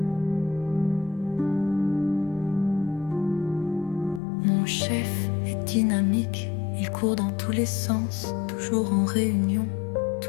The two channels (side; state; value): right; drops out; at 4.2 s